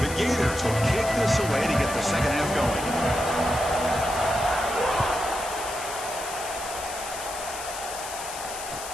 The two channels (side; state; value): left; noise; hiss, 10 dB below the sound